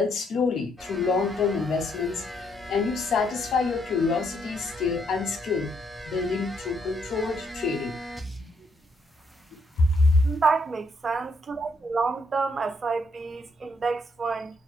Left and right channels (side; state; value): both; normal; correlation 0.73